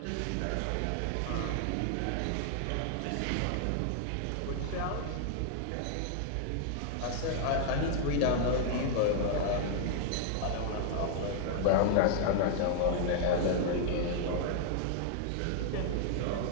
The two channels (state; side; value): different; both; correlation -0.01